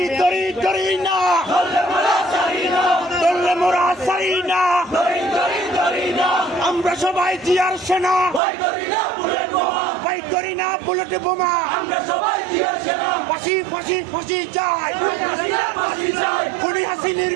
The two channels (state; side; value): drops out; left; at 8.4 s